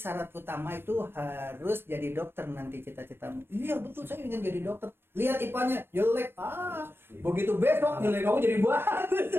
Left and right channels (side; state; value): left; late; 0.11 ms